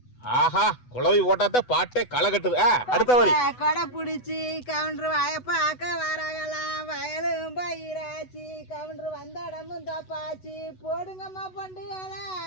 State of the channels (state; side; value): late; right; 8.1 ms